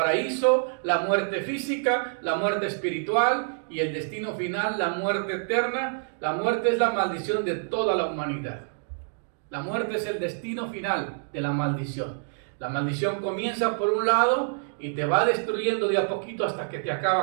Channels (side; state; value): left; silent; digital silence